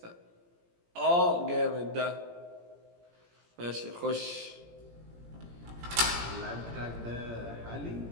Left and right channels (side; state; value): left; late; 17 ms